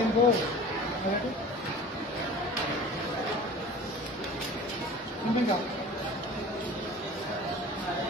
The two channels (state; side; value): normal; both; correlation 0.41